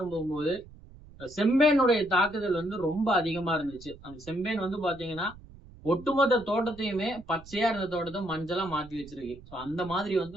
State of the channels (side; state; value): right; noise; rumble, 20 dB below the sound